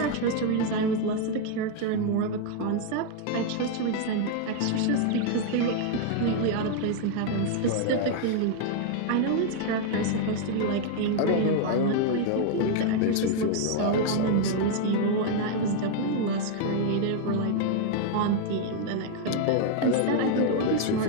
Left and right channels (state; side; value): different; both; correlation 0.00